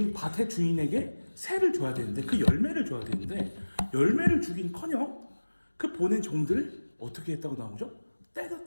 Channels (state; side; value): inverted; both; correlation -1.00